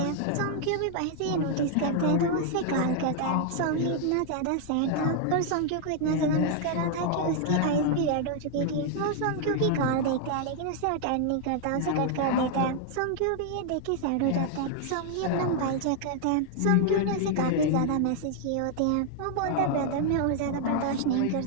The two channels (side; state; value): both; different; correlation 0.00